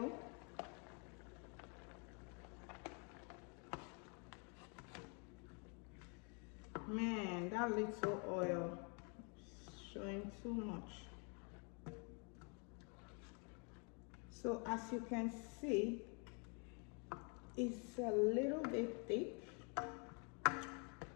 Man, that little oil is showing too much. So as you can see, it's a little bit thick.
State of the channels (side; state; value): right; quieter; 36.4 dB